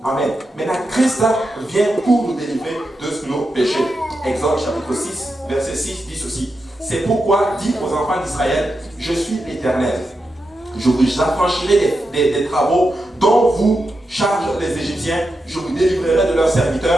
Amen. Maintenant, Christ vient pour nous délivrer de nos péchés. Exode chapitre 6, verset 6 dit ceci. C'est pourquoi dit aux enfants d'Israël, je suis l'Éternel. Je vous affranchirai des travaux dont vous chargent les Égyptiens. Je vous délivrerai de leurs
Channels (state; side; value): normal; both; correlation 0.88